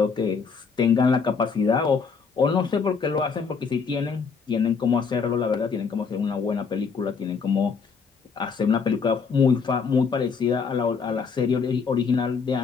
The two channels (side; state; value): right; quieter; 5.5 dB